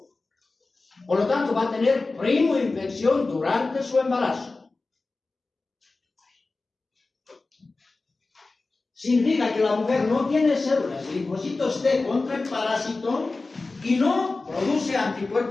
Por lo tanto, va a tener primoinfección durante su embarazo. Significa que la mujer no tiene células de linfocitos T contra el parásito y no produce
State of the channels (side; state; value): right; quieter; 3.5 dB